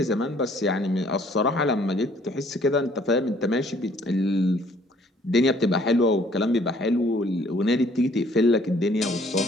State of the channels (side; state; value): both; normal; correlation 0.60